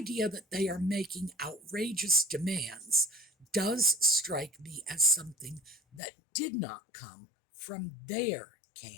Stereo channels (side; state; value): right; drops out; at 6.0 s